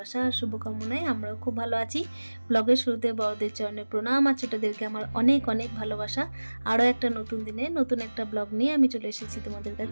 আর শুভকামনায় আমরাও খুব ভালো আছি। ব্লগের শুরুতে বড়দের চরণে প্রণাম আর ছোটদেরকে আমার অনেক অনেক ভালোবাসা। আরও একটা নতুন দিনে নতুন একটা ব্লগ নিয়ে আমি চলে এসেছি তোমাদের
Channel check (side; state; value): both; inverted; correlation -1.00